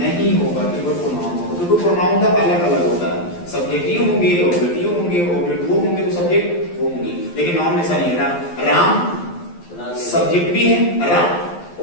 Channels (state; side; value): late; right; 12 ms